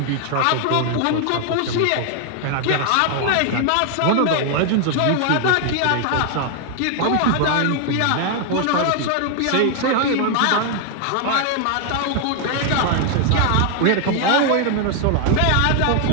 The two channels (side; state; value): both; different; correlation 0.00